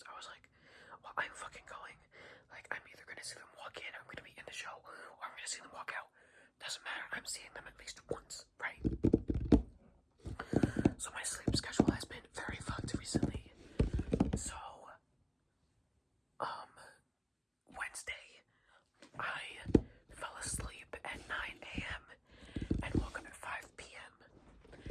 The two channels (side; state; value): both; identical; correlation 1.00